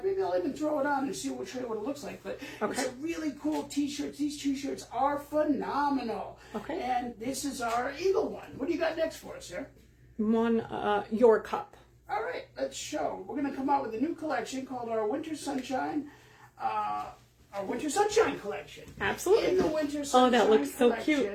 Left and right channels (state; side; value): identical; both; correlation 1.00